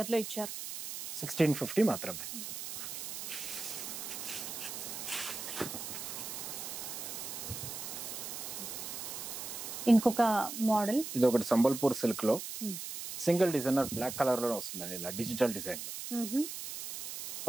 లో ఇచ్చారు. 1650 మాత్రమే. ఇంకొక మోడల్, ఇది ఒకటి సంబల్పూర్ సిల్క్ లో సింగిల్ డిజైనర్ బ్లాక్ కలర్ లో వస్తుందండి. ఇలా డిజిటల్ డిజైన్ లో.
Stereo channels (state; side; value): noise; right; hiss, 7 dB below the sound